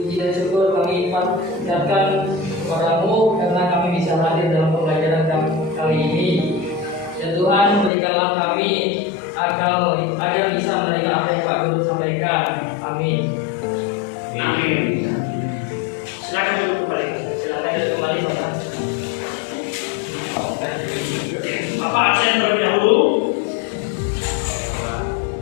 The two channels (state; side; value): drops out; right; at 7.9 s